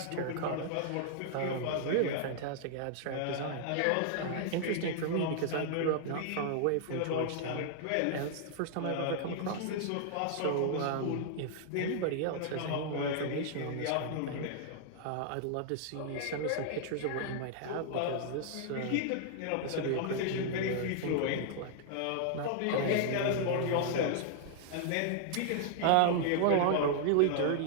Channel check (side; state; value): both; different; correlation -0.01